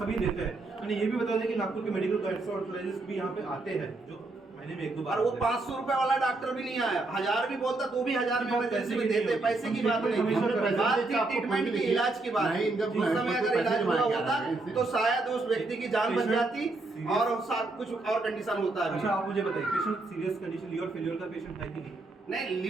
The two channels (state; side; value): quieter; left; 3.2 dB